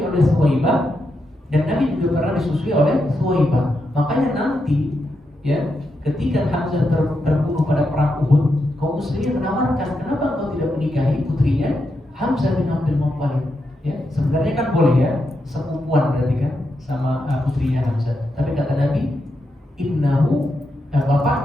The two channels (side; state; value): both; normal; correlation 0.84